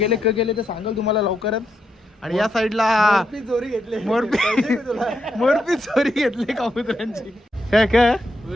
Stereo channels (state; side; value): normal; both; correlation 0.81